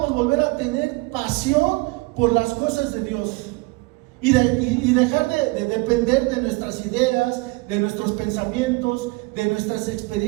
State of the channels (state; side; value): quieter; left; 24.9 dB